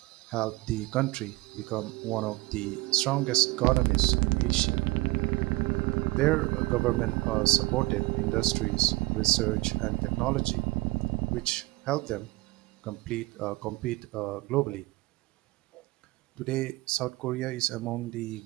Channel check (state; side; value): quieter; left; 21.1 dB